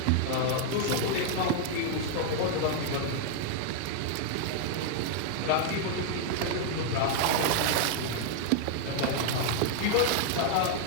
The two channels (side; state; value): both; different; correlation 0.00